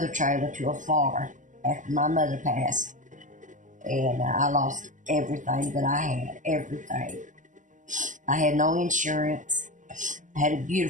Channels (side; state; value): left; late; 0.37 ms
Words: trailer to a fire after my mother passed. And I lost everything that I had, everything. I had no insurance. I had a